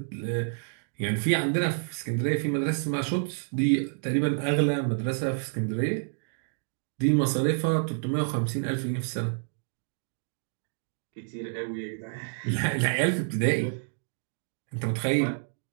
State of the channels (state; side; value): silent; left; digital silence